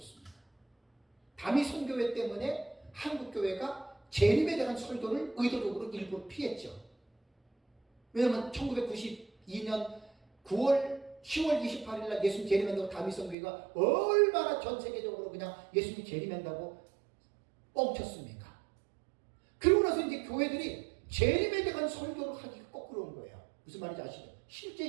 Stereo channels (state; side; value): drops out; left; at 13.4 s